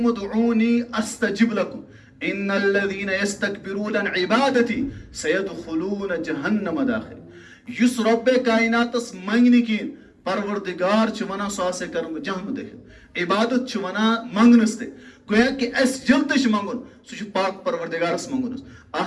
ادعوني استجب لكم ان الذين يستكبرون عن عبادتي سيدخلون جهنم داخل یُس رۄبے کایناتس منٛگہِ نہٕ کِہیٖنۍ پروردگار چھُ ونان سُہ ہسا کرٕ بہٕ جہنم دٲخل عبادت چھُ ونان منٛگنس تہِ گویا کہ اسہِ ییٚلہِ تہِ چھُ منٛگُن سُہ چھُ پاک پروردگارس منٛگُن حظ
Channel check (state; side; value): identical; both; correlation 1.00